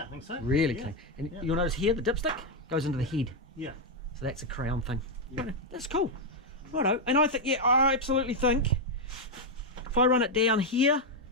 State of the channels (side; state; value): both; normal; correlation 0.01